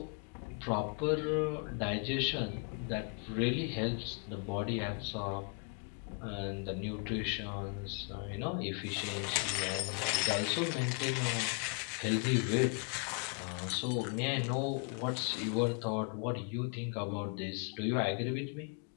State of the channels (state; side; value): quieter; right; 38.3 dB